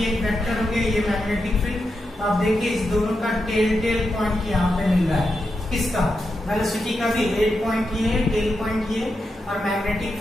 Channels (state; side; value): normal; both; correlation 0.86